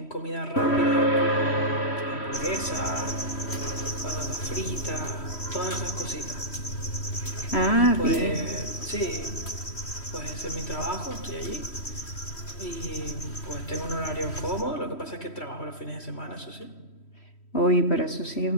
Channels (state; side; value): late; right; 3.1 ms